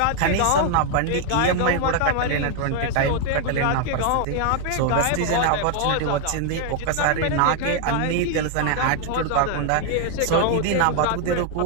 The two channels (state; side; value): different; both; correlation 0.00